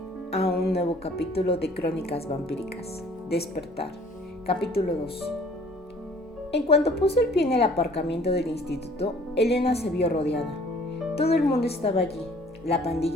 a un nuevo capítulo de Crónicas Vampíricas. Despertar, capítulo 2. En cuanto puso el pie en el aparcamiento del instituto, Elena se vio rodeada. Todo el mundo estaba allí, la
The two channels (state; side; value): normal; both; correlation 0.54